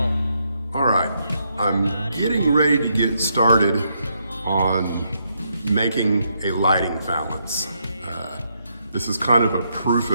All right, I'm getting ready to get started on making a lighting valance. This is kind of a proof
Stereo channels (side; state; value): both; inverted; correlation -0.77